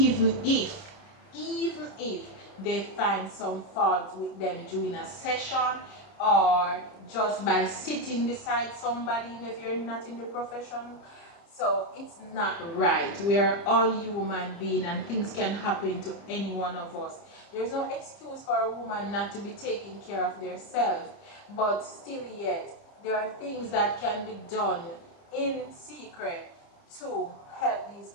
if they find some fault with them during a session, or just by sitting beside somebody if you're not in the profession. So it's not right. We are all human beings and things can happen to any one of us. There's no excuse for a woman not to be taking care of themselves, but still yet there are things that can be done in secret to help these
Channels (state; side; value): late; right; 30 ms